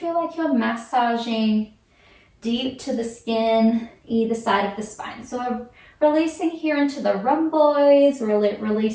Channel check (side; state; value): both; identical; correlation 1.00